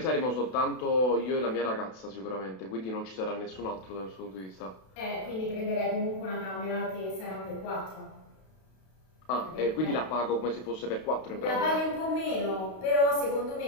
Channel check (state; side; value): late; right; 32 ms